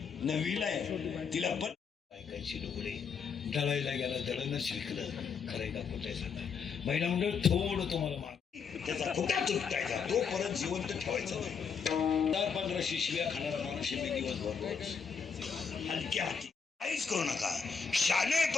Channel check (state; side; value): quieter; right; 6.1 dB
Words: नववीला आहे, तिला पण ऐकायची डोळे दळायला गेला दळणं शिकलं. खरंय का कुठे सांगा महिला मंडळ थोडं तुम्हाला मार त्याचा कुठा तुटतायचा तो परत जिवंत ठेवायचा नाही. 10-15 शिव्या खाणारा माणूस मी दिवस भरतो हलक्या हाती काहीच करू नका. शालेय